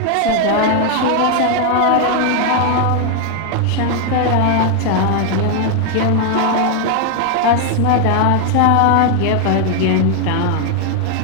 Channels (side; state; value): both; different; correlation 0.01